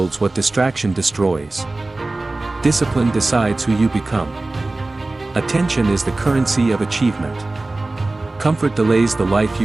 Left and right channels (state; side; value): quieter; left; 3.0 dB